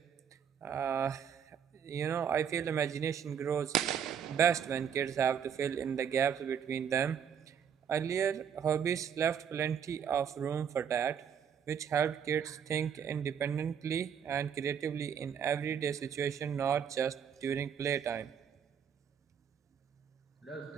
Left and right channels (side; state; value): left; quieter; 7.9 dB